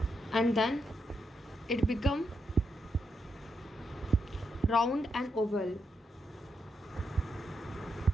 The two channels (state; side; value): normal; both; correlation 0.82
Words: and then it become round and oval.